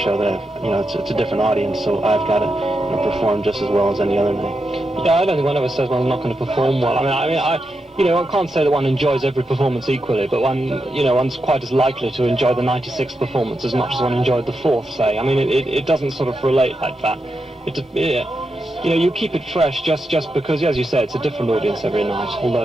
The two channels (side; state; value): both; normal; correlation 0.86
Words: that it's a different audience, so I've got to perform just as well as any other night. Yeah, I don't think one ever says one's not going to perform well. I can't say that one enjoys every performance equally, but one's quite as likely to enjoy the 96th performance as much as one enjoyed the 4th, say. I mean, it doesn't sort of relate like that. You keep it fresh just because, as you say, it's a different audience every night.